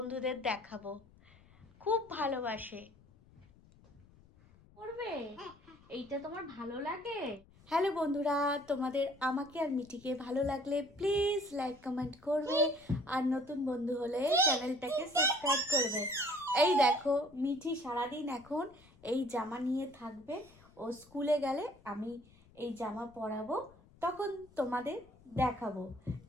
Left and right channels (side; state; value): left; noise; rumble, 26 dB below the sound